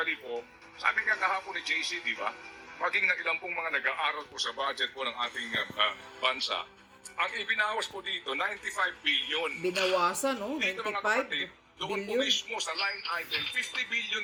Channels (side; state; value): both; identical; correlation 1.00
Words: po, sabi nga kahapon ni JC, di ba? Maging na ilang pong mga nag-aaral po sa budget po ng ating bansa, ang ibinawas po dito, 95 billion. Binawasan, no? Dito mga 95 kapatid, doon po billion. mismo sa line item, 50